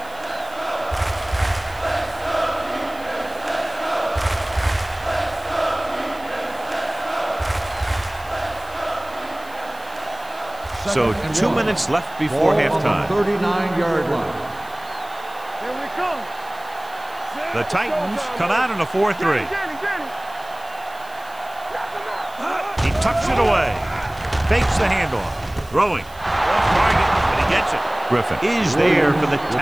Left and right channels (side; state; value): right; noise; hiss, 23 dB below the sound